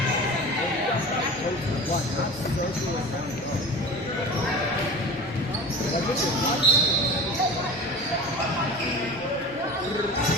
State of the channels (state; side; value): normal; both; correlation 0.35